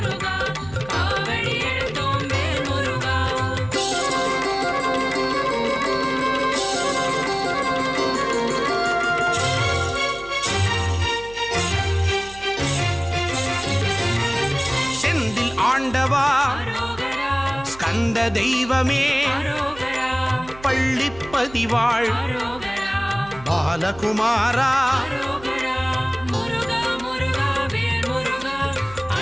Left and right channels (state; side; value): noise; right; hum, 19 dB below the sound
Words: வந்த தெய்வமே அரோகரா பள்ளிப்பதிவாள் அரோகரா பாலகுமாரா அரோகரா முருகா முருகா வேல் முருகா